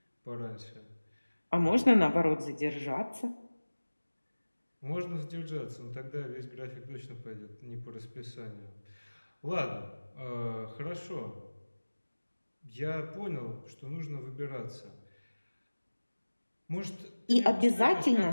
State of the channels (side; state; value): both; inverted; correlation -1.00